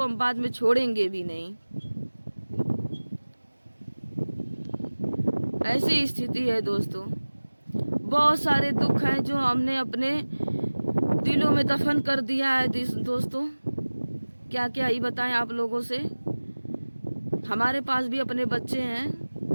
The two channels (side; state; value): both; inverted; correlation -1.00